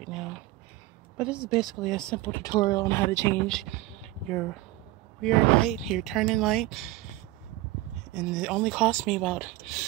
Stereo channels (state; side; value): quieter; left; 17.2 dB